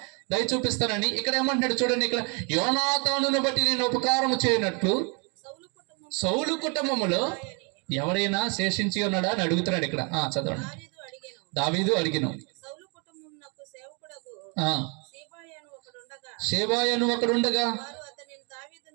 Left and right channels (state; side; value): quieter; left; 34.6 dB